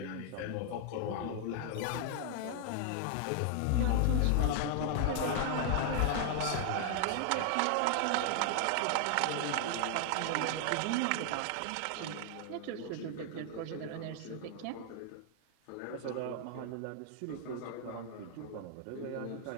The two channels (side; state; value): both; different; correlation 0.00